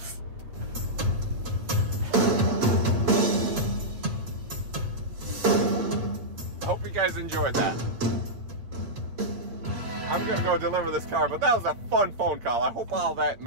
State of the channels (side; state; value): left; late; 8.0 ms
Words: Hope you guys enjoyed that. I'm gonna go deliver this car, but that was a fun phone call. I hope all that